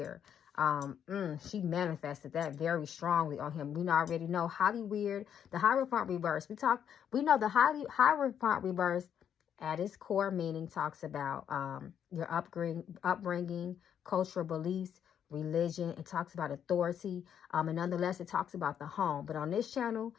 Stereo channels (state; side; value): quieter; right; 8.9 dB